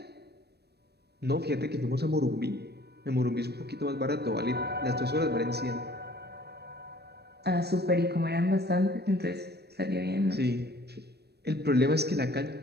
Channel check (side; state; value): left; late; 0.47 ms